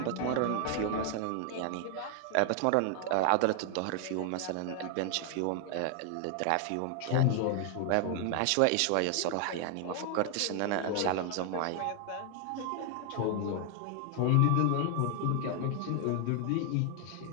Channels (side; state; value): both; different; correlation 0.00